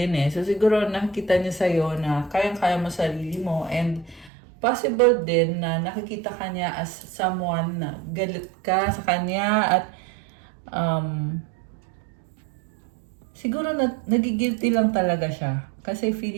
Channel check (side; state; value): left; drops out; at 4.3 s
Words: eh. So, siguro nakikita niya sa'yo na kayang-kaya mo sarili mo and possible din na nakikita ka niya as someone na galit ka sa kanya at siguro nagigilty lang talaga siya. Kasi